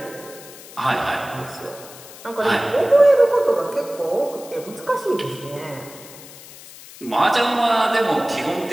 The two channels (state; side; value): noise; left; hiss, 18 dB below the sound